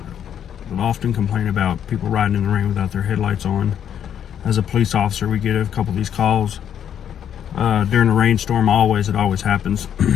will often complain about people riding in the rain without their headlights on. As a police officer, we get a couple of these calls during a rainstorm. It always happens.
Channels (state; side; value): quieter; right; 9.2 dB